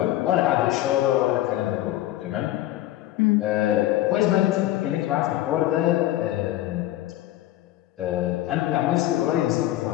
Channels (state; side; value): quieter; right; 14.8 dB